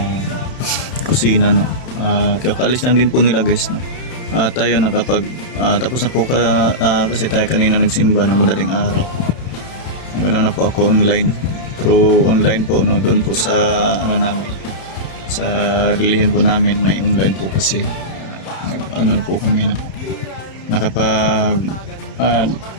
kusina, no. Kakalis lang din po nila guys, no. Tayo nakapag tapos na po kasi tayo kanina nagsimba ng madaling araw. Ganoon na po ako online, through online po, no, doon po sa ano namin, sa religion po namin, may online po kasi ano na po kami, no. Nakapag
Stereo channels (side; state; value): right; late; 31 ms